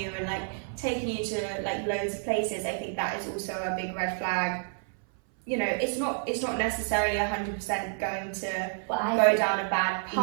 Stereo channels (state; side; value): silent; left; 58 dB below the other